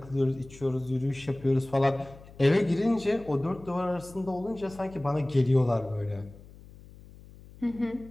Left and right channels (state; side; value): noise; left; hum, 20 dB below the sound